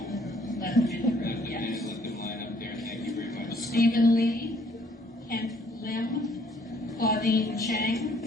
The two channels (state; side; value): normal; both; correlation 0.63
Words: Let them in the let room. them in Yes. and let them line up there? Thank you very much. Stephen Lee, Kent Lim, Claudine